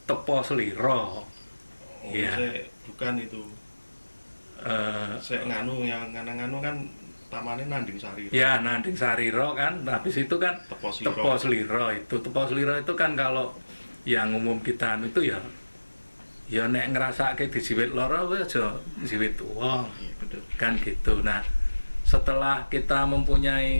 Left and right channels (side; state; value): both; inverted; correlation -1.00